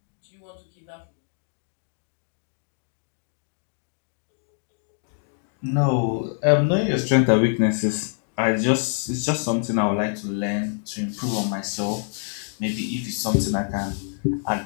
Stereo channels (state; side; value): silent; right; 61 dB below the other